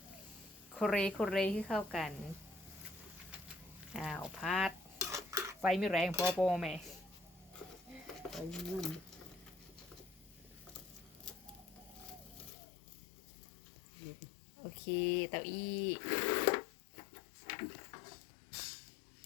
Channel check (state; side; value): drops out; right; at 12.5 s